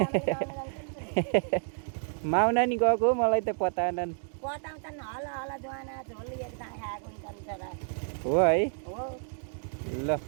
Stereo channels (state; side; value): silent; left; 58 dB below the other